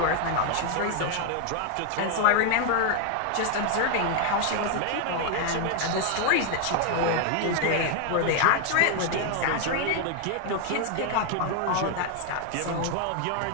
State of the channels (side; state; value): both; different; correlation 0.00